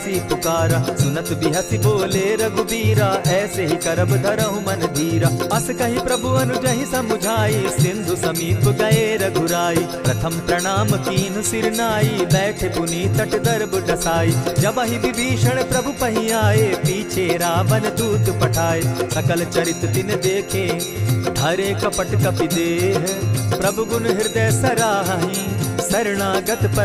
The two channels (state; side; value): identical; both; correlation 1.00